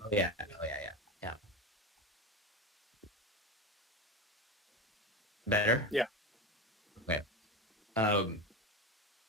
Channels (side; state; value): both; normal; correlation 0.21